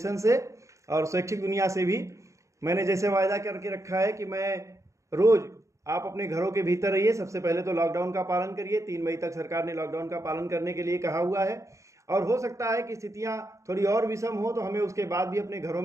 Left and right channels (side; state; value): left; late; 0.15 ms